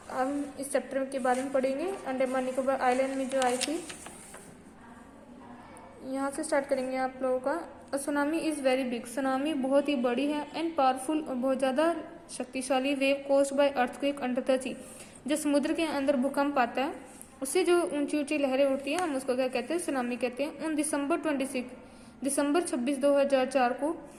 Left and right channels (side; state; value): both; identical; correlation 1.00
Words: हम इस चैप्टर के बारे में पढ़ेंगे. अंडमान निकोबार आइलैंड में जो आई थी, यहाँ से स्टार्ट करेंगे आप लोगों का. Tsunami is very big. Tsunami बहुत ही बड़ी है एंड पावरफुल और बहुत ज़्यादा शक्तिशाली wave caused by earthquake under the sea. जो समुद्र के अंदर भूकंप आता है उससे जो ऊंची ऊंची लहरें उठती हैं हम उसको क्या कहते हैं? सुनामी कहते हैं. उन दिसंबर 26 2004 को